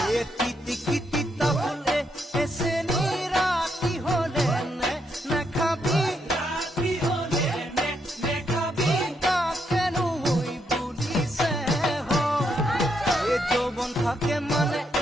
এ তিতি কিতি তাহলে এসে নিরাতি হলে নে খাবি রাতি হলে নে খাবি তা কেন ওই বুঝিছে এ যৌবন থাকে মানে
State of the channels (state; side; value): normal; both; correlation 0.78